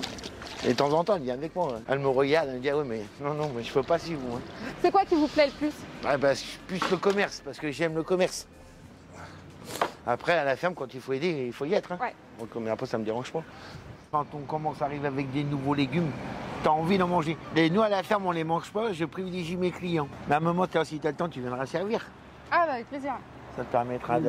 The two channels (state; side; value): identical; both; correlation 1.00